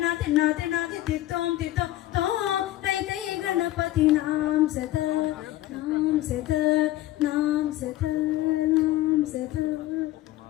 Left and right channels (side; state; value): right; quieter; 15.5 dB